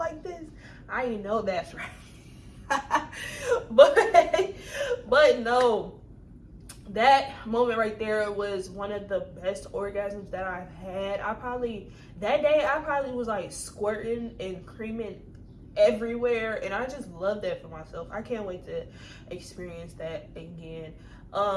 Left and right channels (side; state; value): both; identical; correlation 1.00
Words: this? I ain't know that's right. but no, that moment right there was one of the best orgasms that I've had. That day I probably was like squirting and creaming everywhere, and I just love that for myself. I can't wait to experience that again.